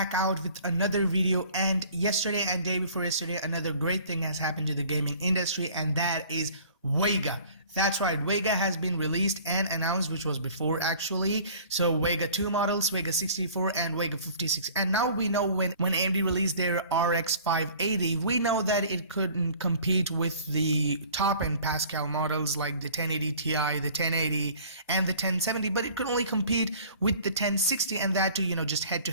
out with another video, and yesterday and day before yesterday another great thing has happened to the gaming industry, and that is VEGA. That's right, VEGA has been released and announced, which was before actually. So VEGA 2 models, VEGA 64 and VEGA 56. And now we know when AMD released their RX 580, we know that it couldn't compete with the top end Pascal models like the 1080 Ti, the 1080 and the 1070, but it could only compete with the 1060, and that too, just head to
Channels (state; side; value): inverted; both; correlation -0.49